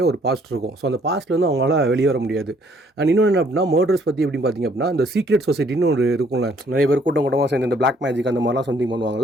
ஒரு பாஸ்ட் இருக்கும். ஸோ அந்த பாஸ்ட்லேருந்து அவங்களால வெளியே வர முடியாது. அண்ட் இன்னொன்று என்ன அப்படின்னா, மர்டர்ஸ் பற்றி எப்படின்னு பார்த்தீங்க அப்படின்னா, இந்த சீக்ரெட் சொசைட்டின்னு ஒரு இருக்கும்ல, நிறைய பேர் கூட்டமாக சேர்ந்து இந்த பிளாக் மேஜிக் அந்த மாதிரிலாம் சம்திங்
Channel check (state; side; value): normal; both; correlation 0.63